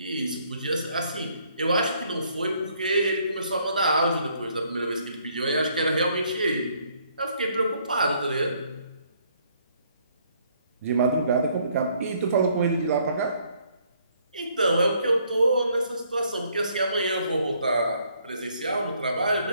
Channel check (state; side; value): inverted; both; correlation -0.66